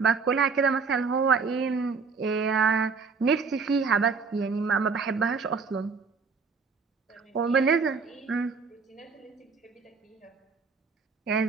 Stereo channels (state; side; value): quieter; left; 5.0 dB